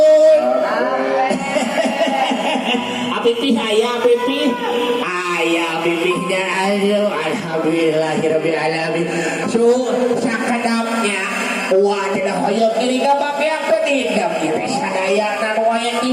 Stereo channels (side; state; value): both; identical; correlation 1.00